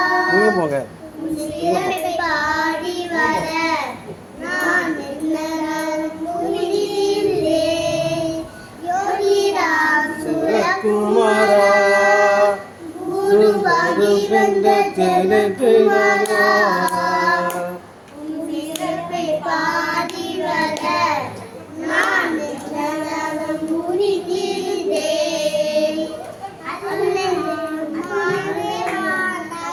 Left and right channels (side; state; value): both; identical; correlation 1.00